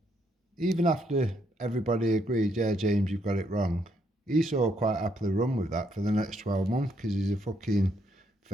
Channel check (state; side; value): normal; both; correlation 0.74